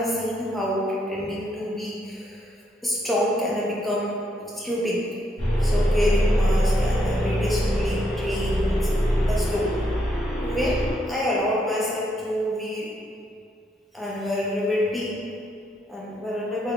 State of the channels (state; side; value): normal; both; correlation 0.76